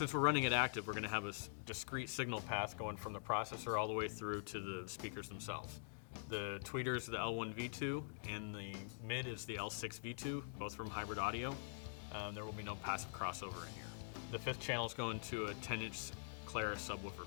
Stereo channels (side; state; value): right; silent; digital silence